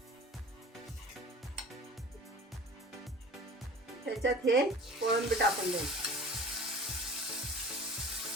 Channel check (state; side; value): normal; both; correlation 0.41